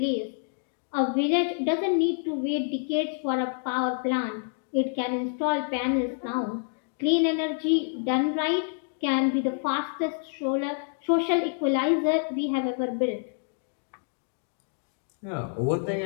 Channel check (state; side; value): silent; right; 60 dB below the other